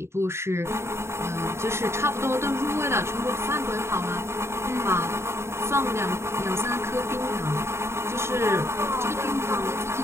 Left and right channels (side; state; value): left; late; 0.13 ms